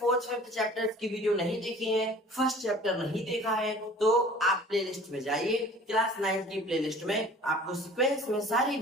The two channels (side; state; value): both; normal; correlation 0.47